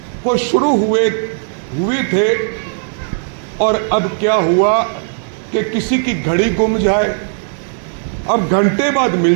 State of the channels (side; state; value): left; silent; digital silence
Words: को शुरू हुए थे, और अब क्या हुआ कि किसी की घड़ी गुम जाए, अब घंटे बाद